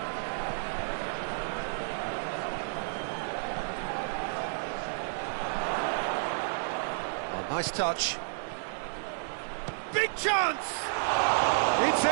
Oh, nice touch. Big chance! It's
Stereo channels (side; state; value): left; silent; digital silence